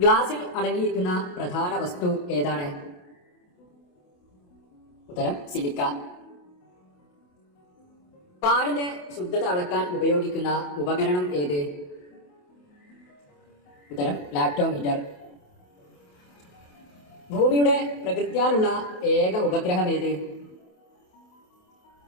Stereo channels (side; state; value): right; late; 28 ms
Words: അടങ്ങിയിരിക്കുന്ന പ്രധാന വസ്തു ഏതാണ്? ഉത്തരം സിലിക്ക. പാലിന്റെ ശുദ്ധത അളക്കാൻ ഉപയോഗിക്കുന്ന ഉപകരണം ഏത്? ഉത്തരം ലാക്ടോമീറ്റർ. ഭൂമിയുടെ പ്രകൃത്യാലുള്ള ഏക ഉപഗ്രഹം ഏത്?